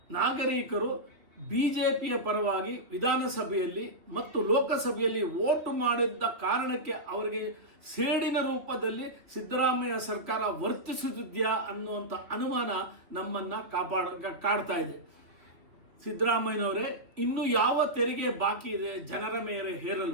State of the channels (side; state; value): left; late; 2.6 ms